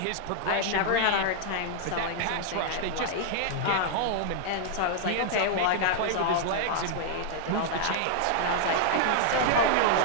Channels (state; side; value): different; both; correlation -0.01